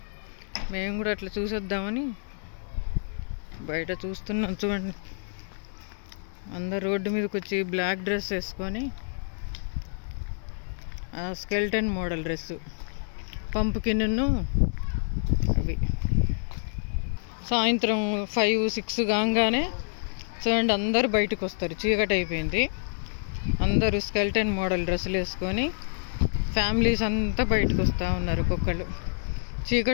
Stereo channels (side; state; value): right; silent; digital silence